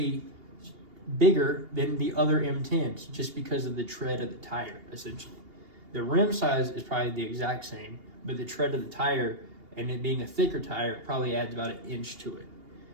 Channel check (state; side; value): late; left; 2.8 ms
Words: bigger than the other M10s just because of the tread of the tire, essentially. The rim size is probably the exact same, but the tread of the tire and it being a thicker tire probably adds about 1 inch to it.